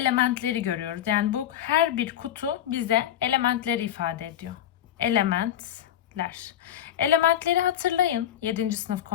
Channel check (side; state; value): right; quieter; 10.9 dB